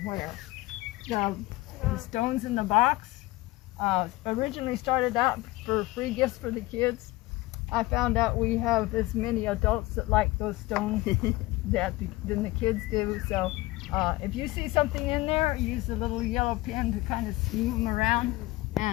The stones in the box originally started out for free gifts for the kids. I found out we have as many adults that like those stones than the kids do. So if you see something in there, use the little yellow pin to kind of move them around.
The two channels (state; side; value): quieter; right; 19.4 dB